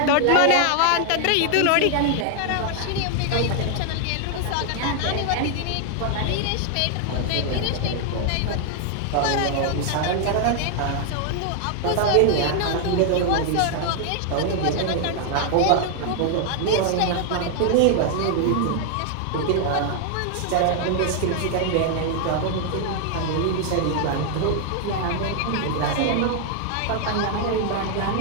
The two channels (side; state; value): both; different; correlation 0.00